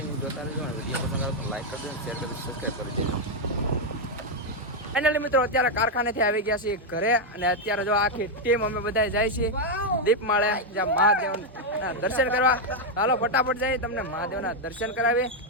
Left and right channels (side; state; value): both; normal; correlation 0.01